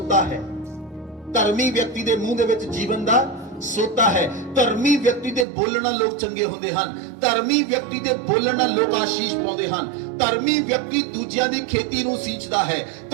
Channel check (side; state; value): left; drops out; at 5.5 s